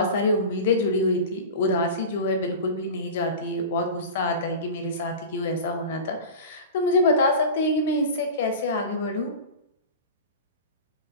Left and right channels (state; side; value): inverted; both; correlation -0.31